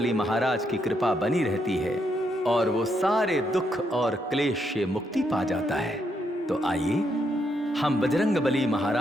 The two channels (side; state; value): both; normal; correlation 0.78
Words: महाराज की कृपा बनी रहती है और वो सारे दुख और क्लेश से मुक्ति पा जाता है। तो आइए हम बजरंगबली